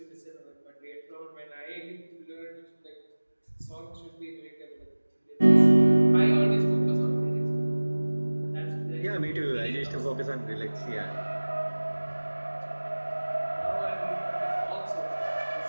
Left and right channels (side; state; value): both; inverted; correlation -1.00